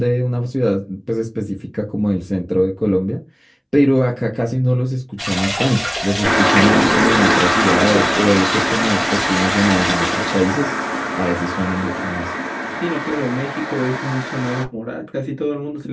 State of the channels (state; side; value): identical; both; correlation 1.00